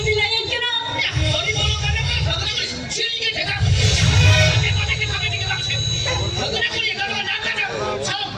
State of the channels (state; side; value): identical; both; correlation 1.00